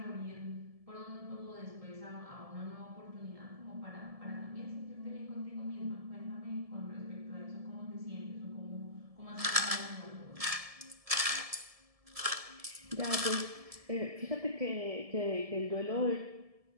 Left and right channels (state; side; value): late; left; 1.7 ms